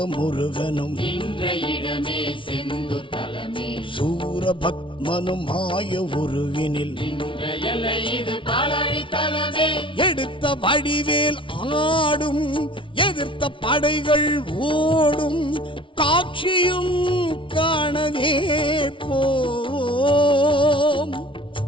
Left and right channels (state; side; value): late; right; 0.25 ms